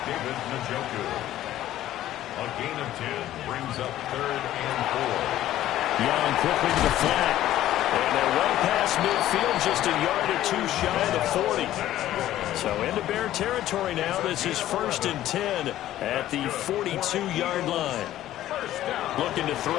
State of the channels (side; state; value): right; quieter; 13.4 dB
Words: David Njoku. A gain of 10 brings up third and 4. Young quickly to the flat. And they're well past midfield, just a yard or two shy of the 40. So into Bear territory now. This is first and 10 at the 42-yard line. Looking to